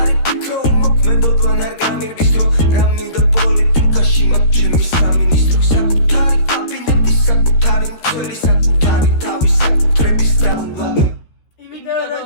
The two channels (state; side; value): late; right; 13 ms